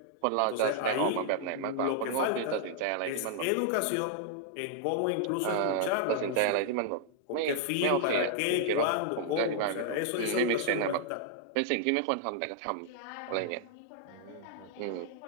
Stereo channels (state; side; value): different; both; correlation -0.01